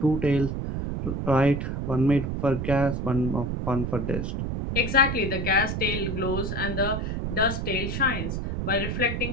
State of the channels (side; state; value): right; noise; rumble, 3 dB below the sound